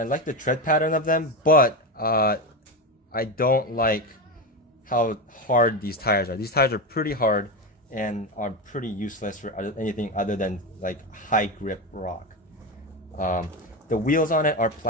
like the tread pattern of them, but I don't like how hard these tires are. These tires are pretty hard and are pretty useless for anything other than like high grip rock. The wheels on it are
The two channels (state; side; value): normal; both; correlation 0.16